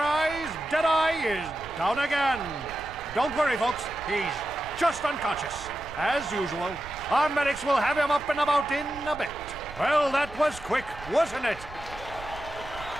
Deadeye is down again. Don't worry, folks, he's just unconscious. As usual, our medics will have him up and about in a bit. Well, that was quick, wasn't it?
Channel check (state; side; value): noise; right; rumble, 15 dB below the sound